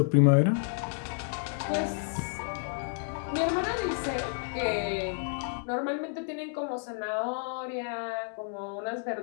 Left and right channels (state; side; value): silent; right; 57 dB below the other